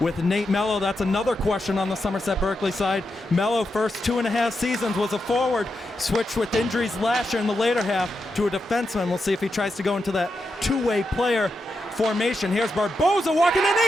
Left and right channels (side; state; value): both; normal; correlation 0.86